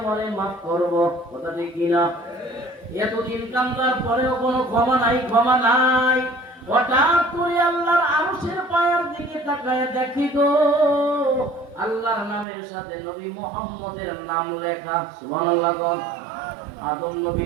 মাফ করব? কথা ঠিক কিনা? এতদিন কান্দার পরেও কোনো ক্ষমা নাই, ক্ষমা নাই। হঠাৎ করে আল্লাহর আরশের পায়ের দিকে তাকায় দেখি গো, আল্লাহর নামের সাথে নবী মুহাম্মদের নাম লেখা। সুবহানাল্লাহ। আদম নবী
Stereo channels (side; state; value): left; drops out; at 12.5 s